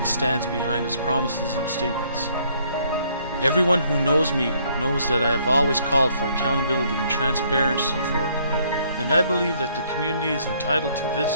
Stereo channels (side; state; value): both; inverted; correlation -0.66